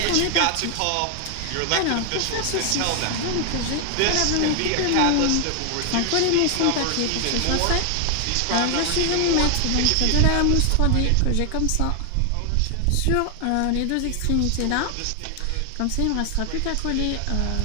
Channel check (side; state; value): both; different; correlation 0.00